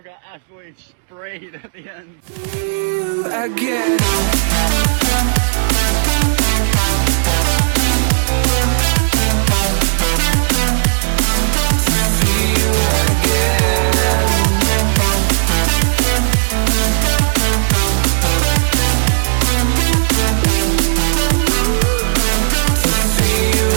got absolutely sprayed at the end. You again.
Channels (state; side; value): silent; left; digital silence